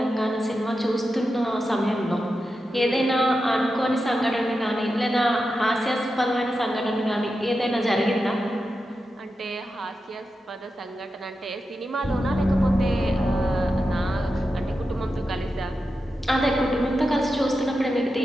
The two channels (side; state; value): both; normal; correlation 0.90